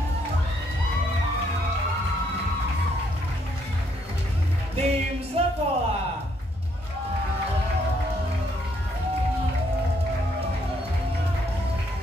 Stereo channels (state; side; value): normal; both; correlation 0.71